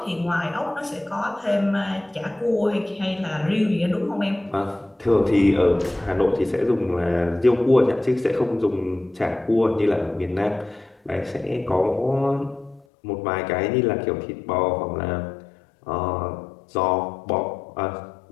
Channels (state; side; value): drops out; right; at 12.9 s